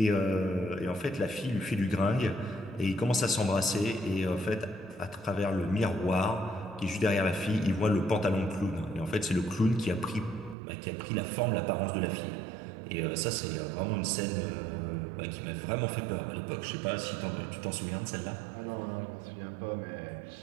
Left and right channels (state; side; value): drops out; left; at 10.6 s